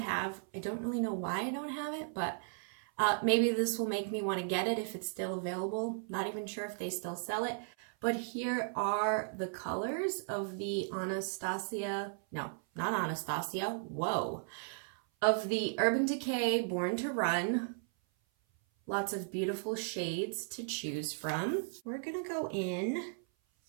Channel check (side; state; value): left; silent; 54 dB below the other